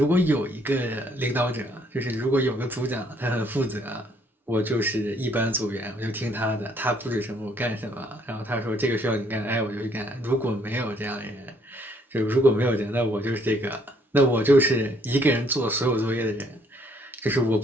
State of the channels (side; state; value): both; normal; correlation 0.66